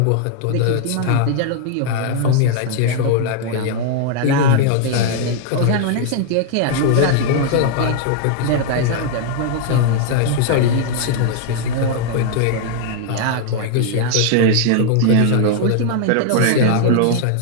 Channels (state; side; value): different; both; correlation 0.00